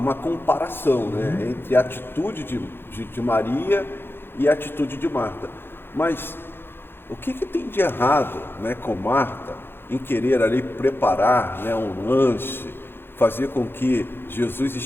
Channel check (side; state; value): right; late; 0.10 ms